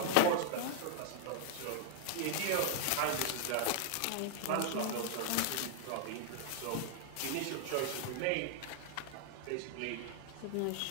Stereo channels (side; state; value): both; different; correlation -0.01